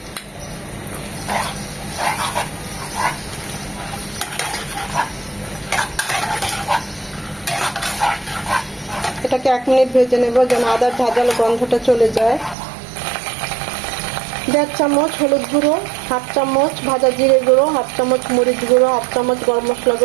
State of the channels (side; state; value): left; drops out; at 12.6 s